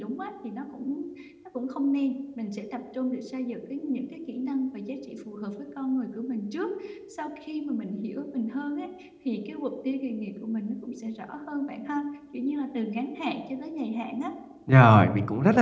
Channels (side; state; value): both; identical; correlation 1.00